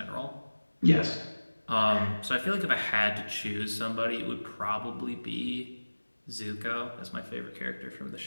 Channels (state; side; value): inverted; both; correlation -1.00